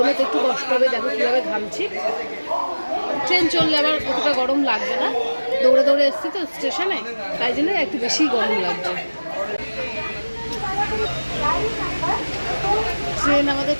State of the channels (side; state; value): both; inverted; correlation -1.00